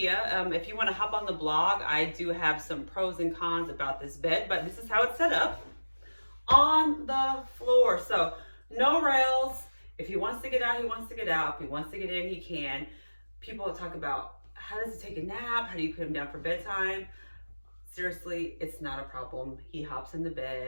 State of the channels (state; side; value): inverted; both; correlation -1.00